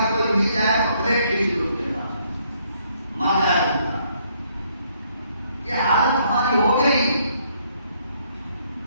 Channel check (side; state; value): both; inverted; correlation -0.69